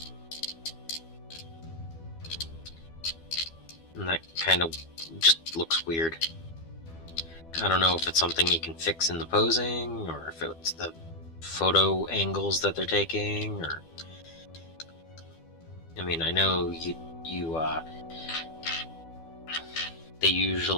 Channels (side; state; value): right; late; 12 ms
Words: And that kind of just looks weird. I don't know if it's something you can fix in the posing, or if it's the photo angles that they're taking, or... I mean, I know they